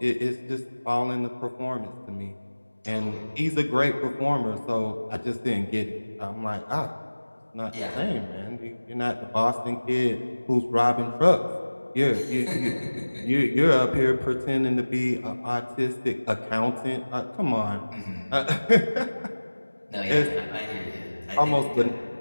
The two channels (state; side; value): inverted; both; correlation -1.00